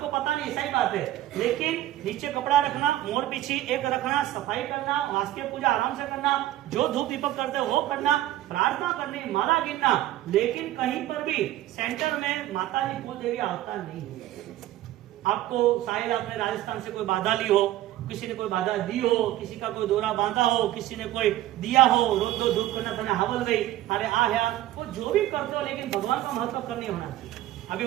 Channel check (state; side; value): quieter; left; 14.4 dB